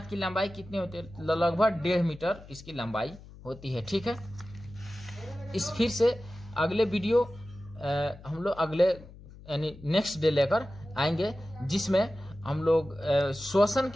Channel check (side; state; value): left; noise; hum, 18 dB below the sound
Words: की लंबाई कितनी होती है? लगभग 1.5 मीटर इसकी लंबाई होती है। ठीक है, इस फिर से अगले वीडियो हम लोग अगले यानी नेक्स्ट डे लेकर आएंगे, जिसमें हम लोग श्वसन